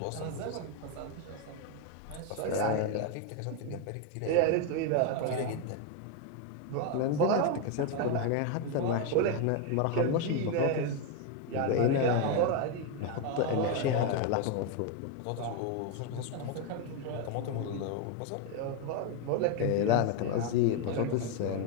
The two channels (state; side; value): different; both; correlation 0.01